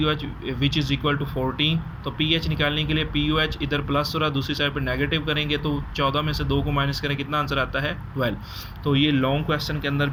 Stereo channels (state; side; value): identical; both; correlation 1.00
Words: which is equal to 14। तो पीएच निकालने के लिए पीओएच इधर प्लस हो रहा, दूसरी साइड पर नेगेटिव करेंगे तो 14 में से 2 को माइनस करें, कितना आंसर आता है 12। तो ये लॉन्ग क्वेश्चन के अंदर